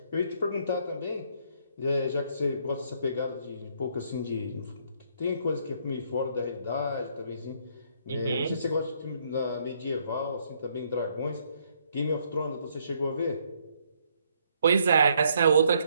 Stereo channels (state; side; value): inverted; both; correlation -0.69